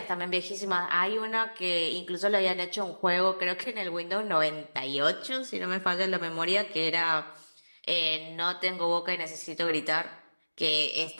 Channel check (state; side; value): inverted; both; correlation -1.00